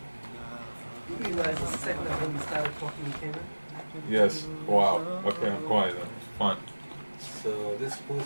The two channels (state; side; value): inverted; both; correlation -1.00